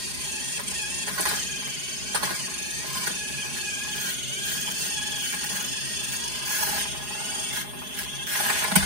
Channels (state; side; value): late; left; 4.8 ms